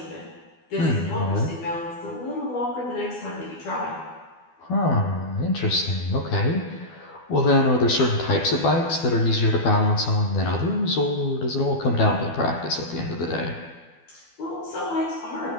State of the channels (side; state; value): right; late; 12 ms